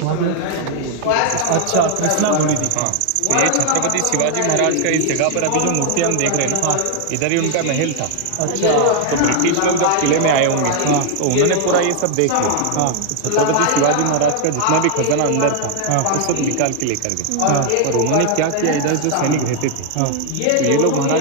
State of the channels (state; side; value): different; both; correlation 0.00